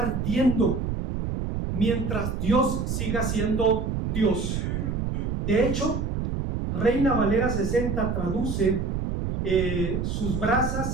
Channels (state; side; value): noise; right; rumble, 2 dB below the sound